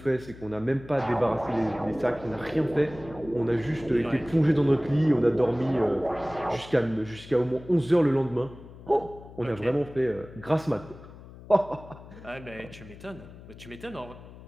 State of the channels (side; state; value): left; noise; hum, 17 dB below the sound